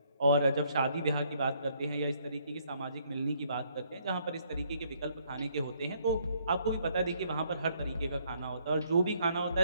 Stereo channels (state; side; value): inverted; both; correlation -0.68